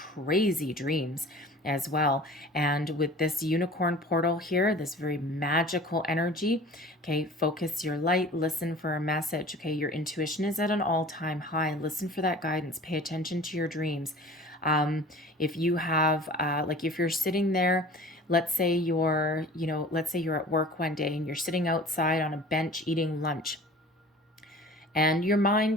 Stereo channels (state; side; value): normal; both; correlation 0.43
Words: dreams as well. And with this unicorn portal here, this very magical energy, okay, focus your light, listen for a message. Okay, your intuition is at an all-time high. Listen for that guidance. Pay attention to your dreams. If you have, if you're sitting there, let's say you're at work one day and you're sitting outside on a bench eating lunch, and your